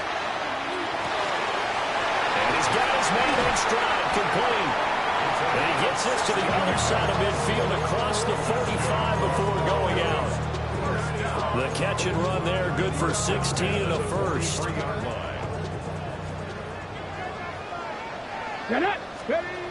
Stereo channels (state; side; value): identical; both; correlation 1.00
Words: And he's got his man in stride, complete. And he gets this to the other side of midfield across the 45 before going out. The catch and run there, good for 16 and a first. Looking